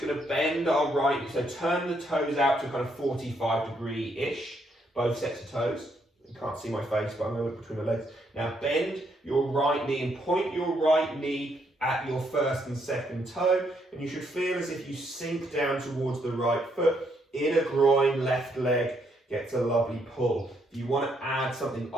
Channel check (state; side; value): normal; both; correlation 0.74